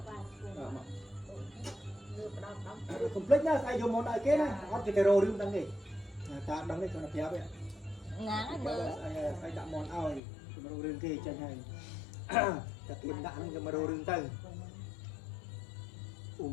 កកុំភ្លេចណាស្អីយកមកដល់គេណាអត់គេទៅរោរឿងដឹងទេតាដឹងទេគាត់ប្រាប់ទេណាងហើយមើលស្អីដាក់មកឲ្យទៅរោរឿងគេចេញហើយតែគេដាក់ហ្នឹងយកមករោរឿងទៅអូ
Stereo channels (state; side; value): drops out; right; at 10.2 s